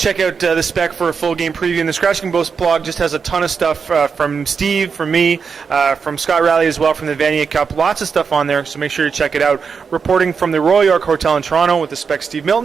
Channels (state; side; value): quieter; left; 5.8 dB